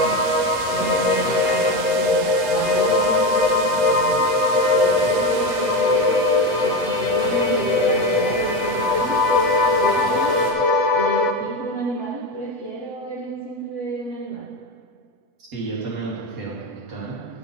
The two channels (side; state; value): left; late; 8.1 ms